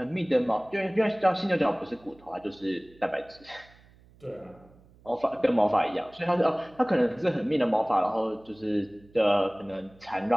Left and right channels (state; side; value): noise; right; hum, 27 dB below the sound